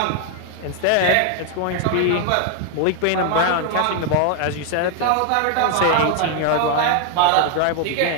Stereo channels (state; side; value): different; both; correlation 0.00